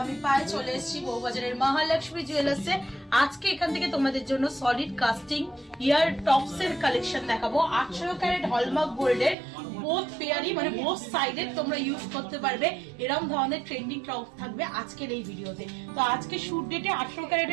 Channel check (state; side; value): drops out; left; at 9.3 s